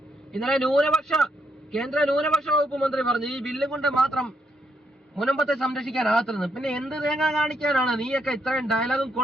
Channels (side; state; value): both; normal; correlation 0.76